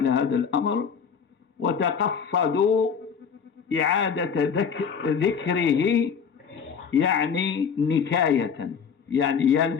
هذا الأمر وتقصدوا إعادة ذكره، يعني نكاية، يعني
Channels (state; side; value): quieter; right; 6.6 dB